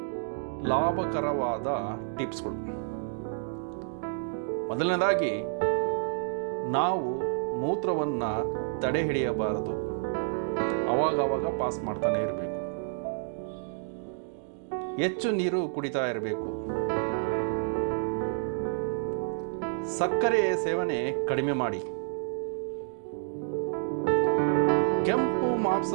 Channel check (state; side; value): silent; left; digital silence